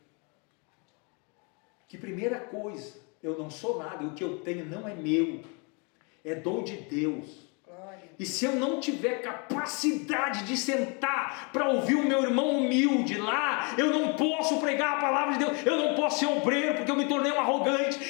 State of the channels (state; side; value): quieter; right; 33.7 dB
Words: que, primeira coisa, eu não sou nada, o que eu tenho não é meu, é dom de Deus. E se eu não tiver capacidade de sentar para ouvir o meu irmão humilde lá, eu não posso pregar a palavra de Deus, eu não posso ser obreiro, porque eu me tornei um